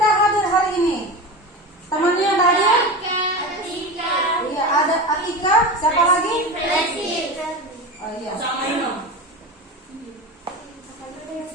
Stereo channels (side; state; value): both; normal; correlation 0.26